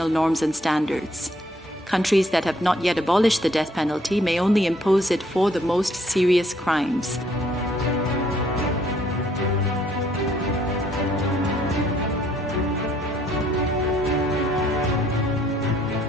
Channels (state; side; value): normal; both; correlation 0.66